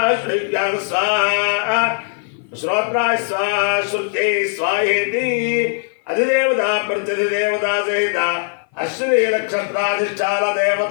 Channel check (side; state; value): right; silent; 57 dB below the other